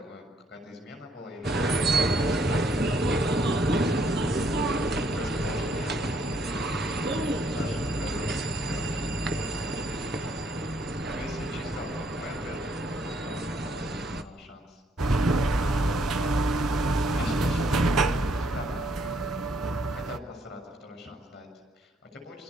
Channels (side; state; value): both; normal; correlation 0.69